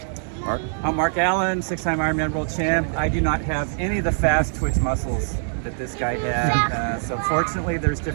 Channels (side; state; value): left; silent; digital silence